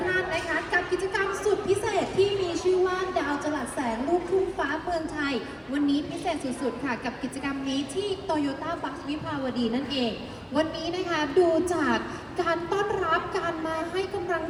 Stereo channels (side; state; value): both; identical; correlation 1.00